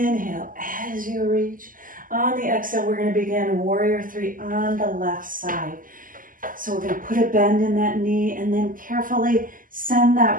as you reach. On the exhale, we're going to begin warrior three on the left side. So we're going to put a bend in that knee and then carefully send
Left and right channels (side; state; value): left; late; 0.40 ms